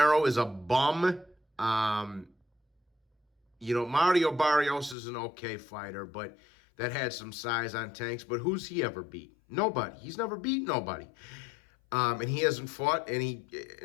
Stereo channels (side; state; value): right; drops out; at 5.0 s